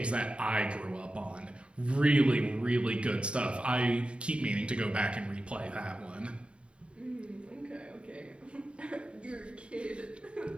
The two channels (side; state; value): left; late; 0.057 ms